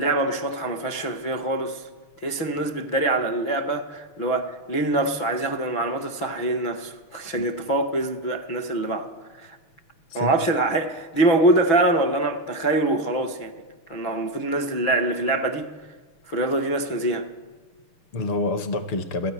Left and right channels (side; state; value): right; late; 6.1 ms